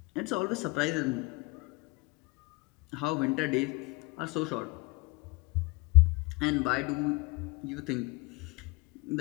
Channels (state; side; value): quieter; right; 25.5 dB